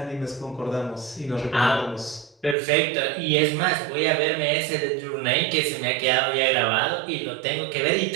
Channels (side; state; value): left; drops out; at 2.6 s